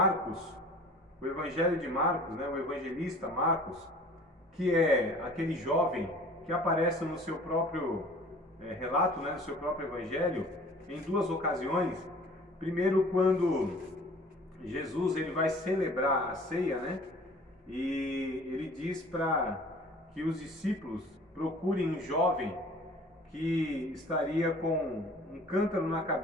o Evangelho de Marcos, né, o evangelista Marcos, que é aquele jovem que aparece no seu próprio relato, né, no seu próprio Evangelho, em duas ocasiões. Primeiro, quando Jesus ele vai celebrar a ceia, né, e ele diz para que os discípulos procurem um jovem que estaria com um cântaro na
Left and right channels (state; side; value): normal; both; correlation 0.48